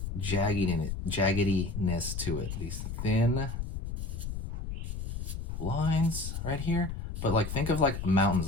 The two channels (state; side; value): noise; left; rumble, 5 dB below the sound